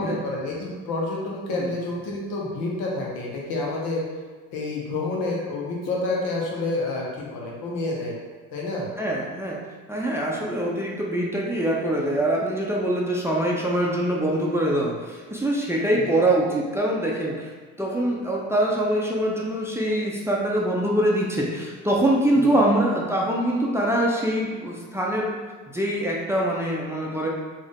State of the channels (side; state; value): both; normal; correlation 0.49